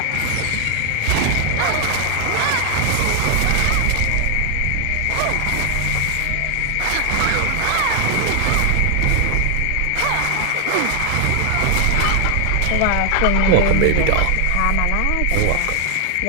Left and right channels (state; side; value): different; both; correlation 0.00